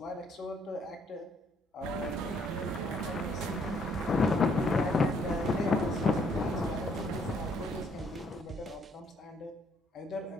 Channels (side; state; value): both; normal; correlation 0.67